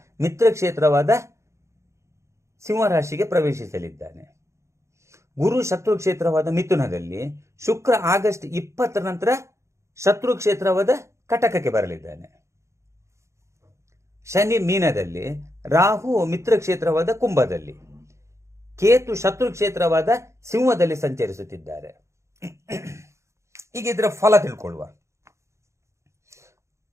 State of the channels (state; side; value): late; left; 0.14 ms